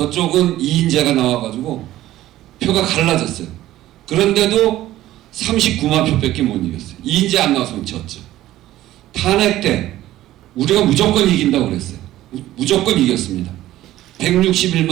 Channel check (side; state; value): left; quieter; 14.7 dB